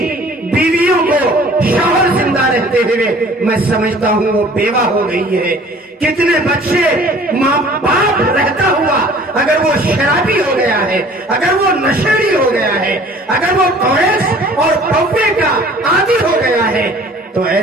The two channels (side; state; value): both; normal; correlation 0.50